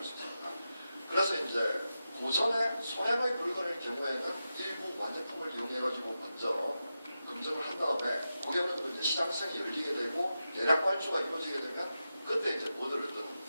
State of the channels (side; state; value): both; inverted; correlation -0.90